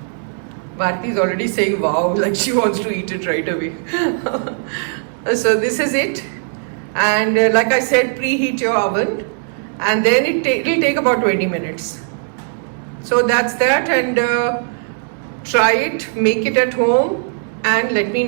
Bharti is already saying wow, like she wants to eat it right away. So this is it. And like I said, preheat your oven and then it will take about 20 minutes. So that's that, and try it, make it at home and let me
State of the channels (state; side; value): silent; left; 67 dB below the other